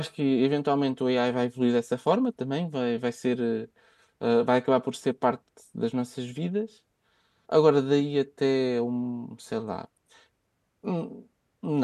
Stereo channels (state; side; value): identical; both; correlation 1.00